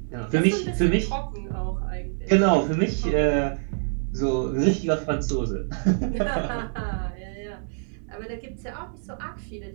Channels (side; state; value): left; silent; digital silence